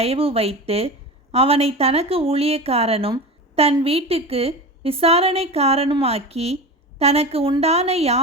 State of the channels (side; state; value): both; normal; correlation 0.28